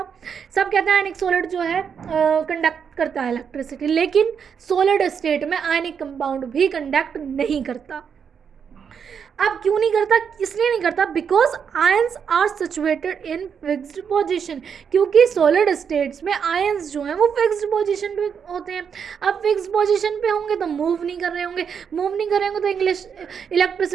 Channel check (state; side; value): quieter; left; 7.0 dB